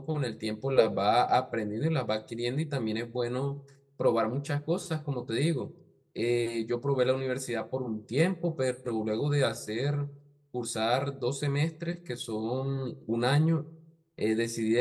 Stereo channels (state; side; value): identical; both; correlation 1.00